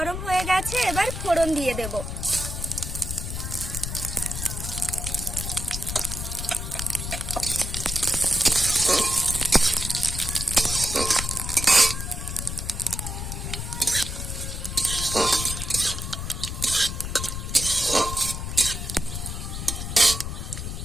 হয়ে গেছে, এবার ফোড়ন দিয়ে দেব।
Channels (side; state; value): left; noise; rumble, 5 dB below the sound